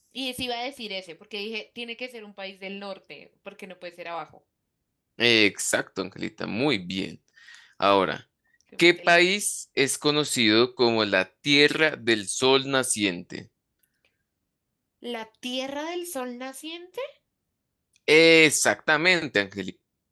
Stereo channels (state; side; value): identical; both; correlation 1.00